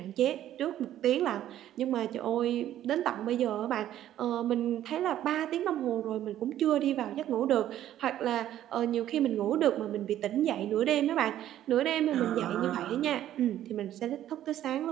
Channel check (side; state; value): left; quieter; 12.2 dB